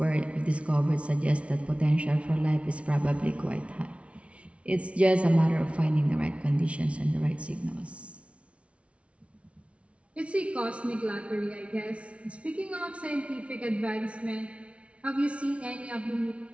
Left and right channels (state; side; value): late; left; 0.062 ms